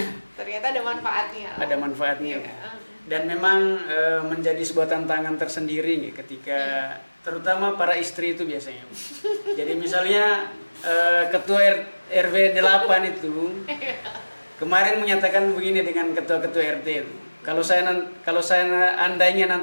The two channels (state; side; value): inverted; both; correlation -1.00